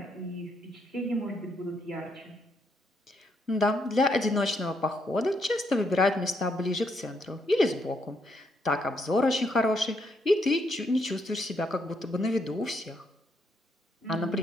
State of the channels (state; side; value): normal; both; correlation 0.75